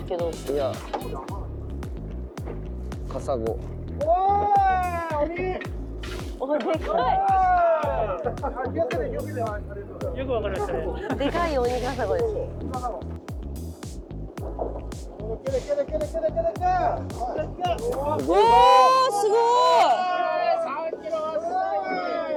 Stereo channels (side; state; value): both; identical; correlation 1.00